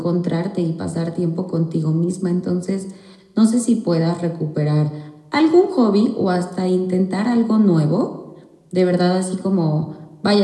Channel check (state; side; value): identical; both; correlation 1.00